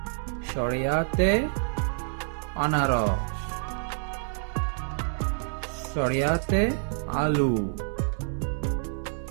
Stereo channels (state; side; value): silent; left; digital silence